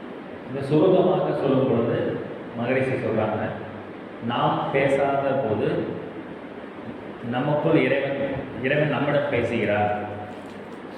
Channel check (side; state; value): both; identical; correlation 1.00